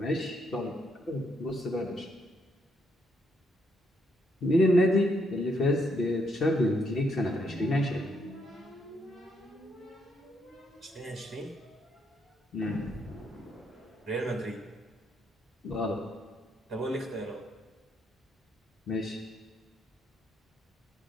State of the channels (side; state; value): both; normal; correlation 0.75